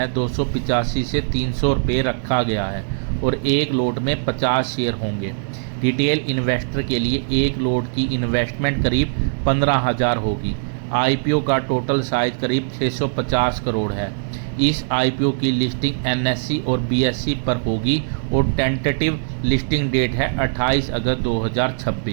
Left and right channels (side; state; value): left; silent; digital silence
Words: 285 से 300 रुपये रखा गया है और एक लोट में 50 शेयर होंगे। रिटेल इन्वेस्टर के लिए एक लोट की इन्वेस्टमेंट करीब 15,000 होगी। आईपीओ का टोटल साइज करीब 650 करोड़ है। इस आईपीओ की लिस्टिंग एनएससी और बीएससी पर होगी और टेंटेटिव लिस्टिंग डेट है 28 अगस्त